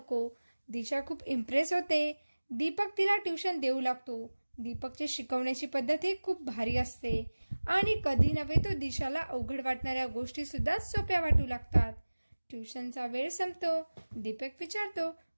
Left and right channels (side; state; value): both; inverted; correlation -1.00